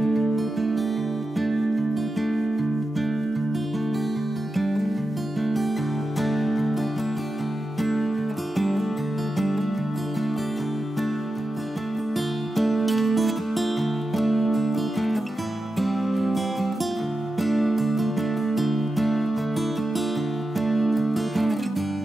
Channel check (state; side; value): normal; both; correlation 0.91